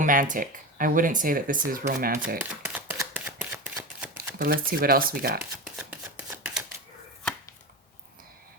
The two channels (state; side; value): normal; both; correlation 0.23